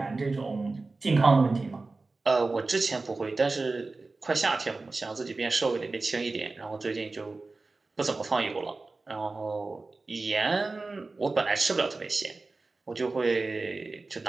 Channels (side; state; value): left; quieter; 3.6 dB